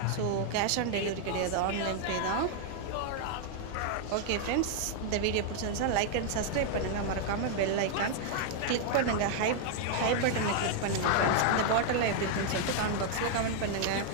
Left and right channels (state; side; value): different; both; correlation 0.00